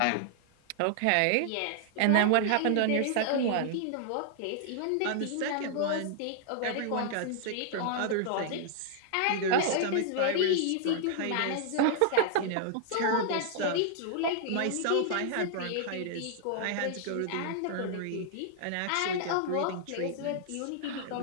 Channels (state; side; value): different; both; correlation -0.01